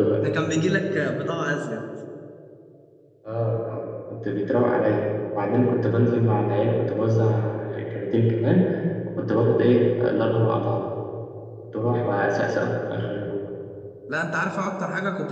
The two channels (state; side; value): identical; both; correlation 1.00